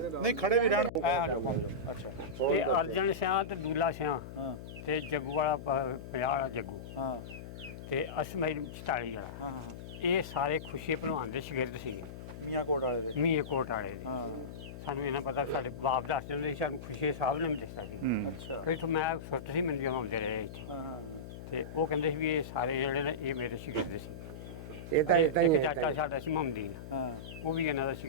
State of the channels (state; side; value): noise; left; hum, 11 dB below the sound